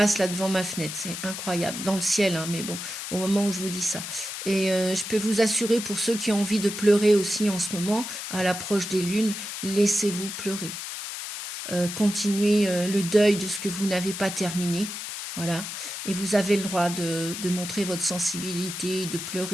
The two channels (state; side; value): noise; left; hiss, 7 dB below the sound